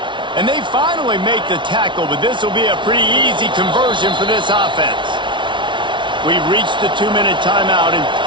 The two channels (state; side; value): late; left; 0.24 ms